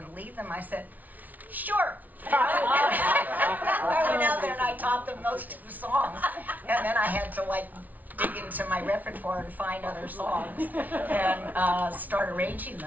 lead them, I said, "Sure, I went out there and I taught them those 2 songs, and then I had to like dig into my repertoire and find other songs and start arranging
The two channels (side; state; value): left; late; 0.077 ms